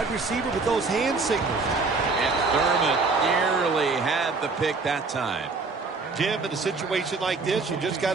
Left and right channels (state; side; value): quieter; left; 4.1 dB